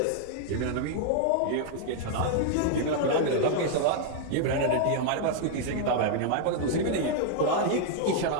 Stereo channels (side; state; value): both; different; correlation 0.00